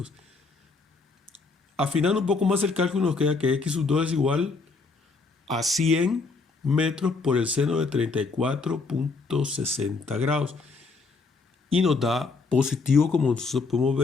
Afinando un poco más el cálculo, nos queda que x sub 2 es igual a 100 metros por el seno de 34.60 grados. Y nos da positivo, como nosotros podemos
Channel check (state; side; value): quieter; right; 4.1 dB